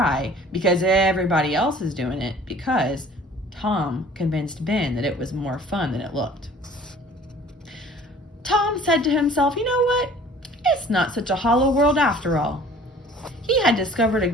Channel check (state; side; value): normal; both; correlation 0.50